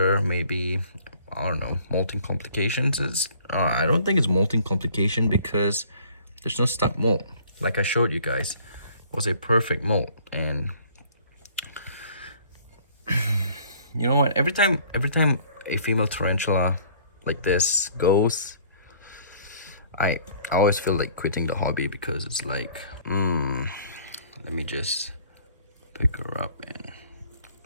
Maybe, I don't know, molting complications is I don't think it's molting complication, because there's no stuck molt. Like I showed you guys, it was a perfect molt. And you know what, every time a female tarantula like this goes, I always feel like quitting the hobby, because it's like, let me just pick her up. And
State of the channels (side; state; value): both; inverted; correlation -0.55